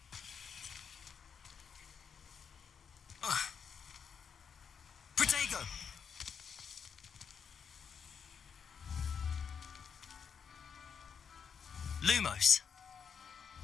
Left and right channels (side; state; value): right; quieter; 6.8 dB